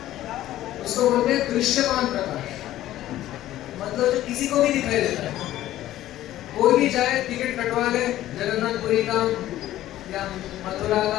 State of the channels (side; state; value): right; quieter; 13.9 dB